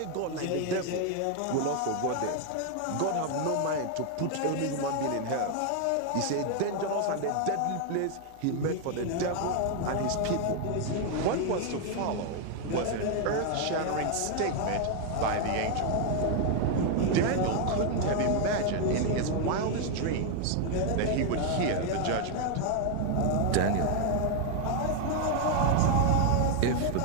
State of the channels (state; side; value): different; both; correlation 0.00